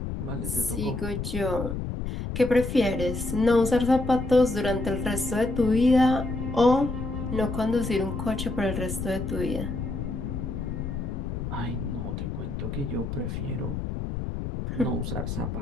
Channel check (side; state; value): left; noise; rumble, 4 dB below the sound